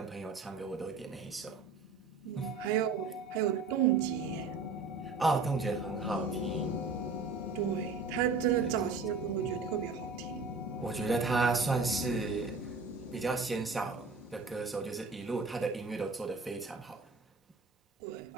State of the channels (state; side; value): quieter; left; 4.2 dB